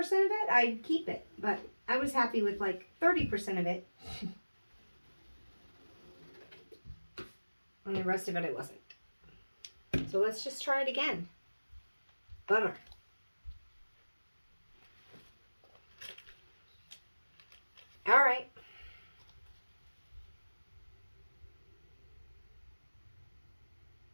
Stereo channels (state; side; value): inverted; both; correlation -1.00